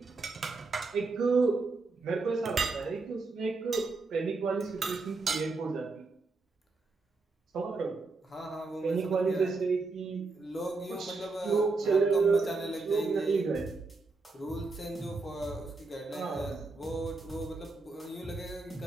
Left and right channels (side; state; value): left; quieter; 3.8 dB